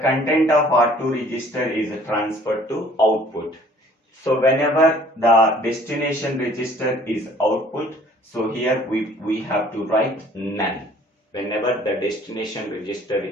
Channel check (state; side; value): normal; both; correlation 0.55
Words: content of R2 register is transferred to output. So whenever the destination register is output, so here we have to write none. Whenever the destination register